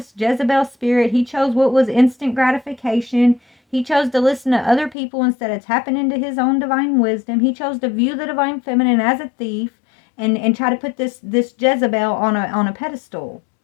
Jezebel spirit. He chose what was instant gratification. He chose to listen to other people instead of tapping into his own divine wisdom. He chose to view the Divine Feminine as a thief and try to put this Jezebel on a pedestal.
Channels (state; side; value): drops out; right; at 5.0 s